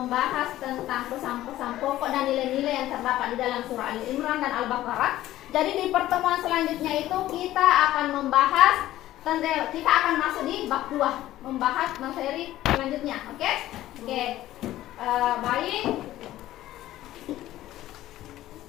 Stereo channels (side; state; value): right; quieter; 14.5 dB